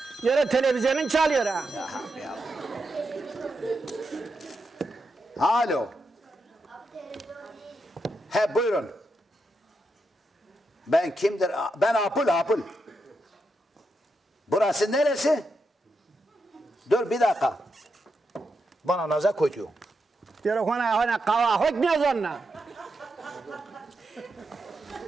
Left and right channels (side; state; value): both; normal; correlation 0.85